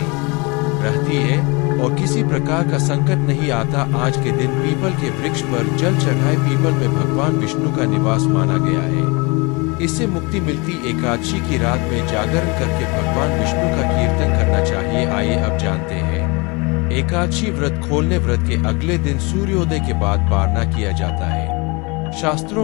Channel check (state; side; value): quieter; right; 28.1 dB